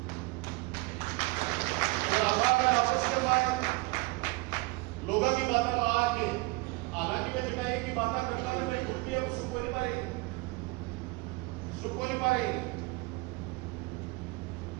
आपस के मैं लोगों की बात में आके हालांकि मैं जगह एक ही बात करता था, मैं खुद की अब सुख को नहीं पा रही,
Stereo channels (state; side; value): quieter; left; 24.7 dB